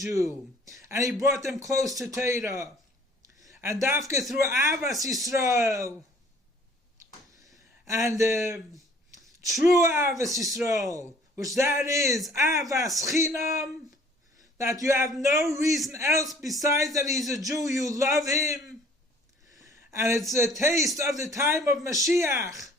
And he brought them close to Torah. And dafka through Avas Yisrael. And true Avas Yisrael, which that is Avas Chinam, that you have no reason else besides that he's a Jew, you love him. And it's a taste of the time of Mashiach,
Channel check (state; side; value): normal; both; correlation 0.55